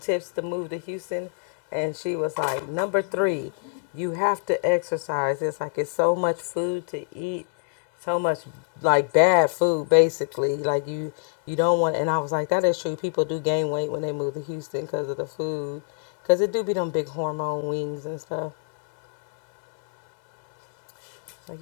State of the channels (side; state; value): right; silent; digital silence